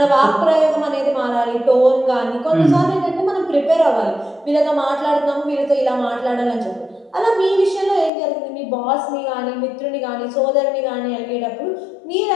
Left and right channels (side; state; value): right; drops out; at 8.1 s